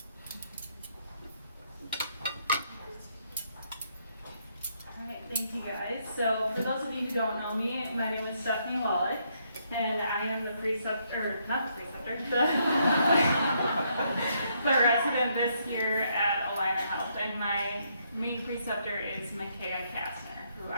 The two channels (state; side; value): inverted; both; correlation -0.74